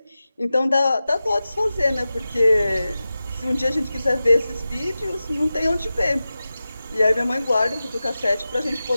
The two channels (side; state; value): both; inverted; correlation -0.94